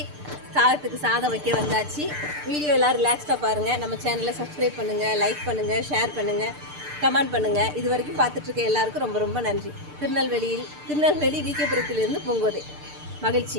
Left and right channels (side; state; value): left; late; 6.7 ms